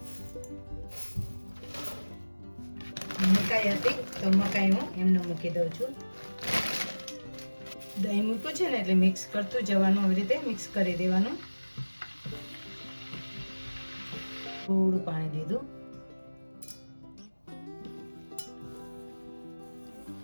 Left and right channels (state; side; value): inverted; both; correlation -1.00